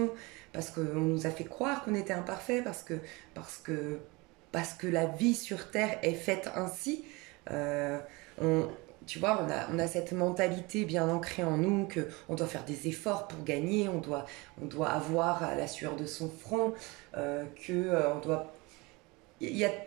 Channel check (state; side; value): quieter; left; 25.2 dB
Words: parce qu'on nous a fait croire qu'on était imparfait, parce que, parce que la vie sur Terre est faite ainsi. Euh, on, Tu vois, on a cette mentalité bien ancrée en nous que on doit faire des efforts pour gagner, on doit avoir la sueur de son front, on doit... Il y a